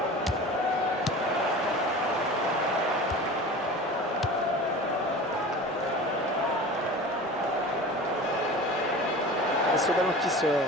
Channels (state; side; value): normal; both; correlation 0.36